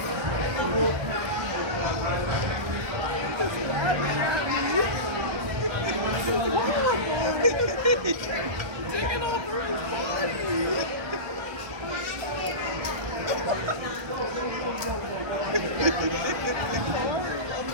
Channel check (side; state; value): left; late; 1.5 ms